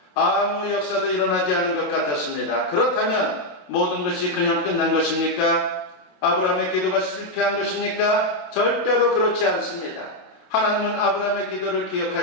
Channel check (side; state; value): right; late; 27 ms